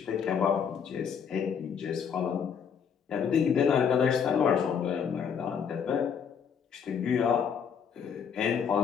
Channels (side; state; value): right; quieter; 7.2 dB